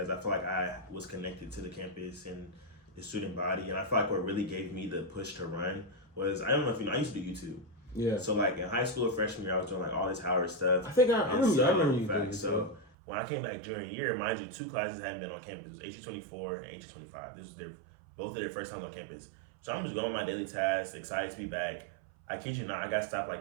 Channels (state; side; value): drops out; left; at 12.9 s